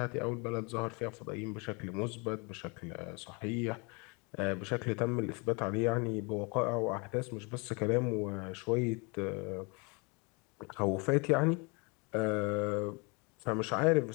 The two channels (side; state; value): right; quieter; 31.0 dB